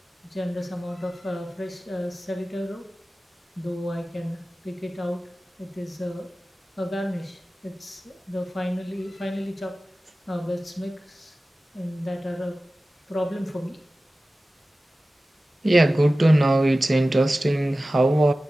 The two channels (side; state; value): both; normal; correlation 0.96